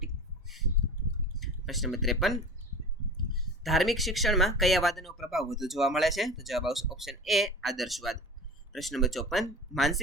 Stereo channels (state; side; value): normal; both; correlation 0.34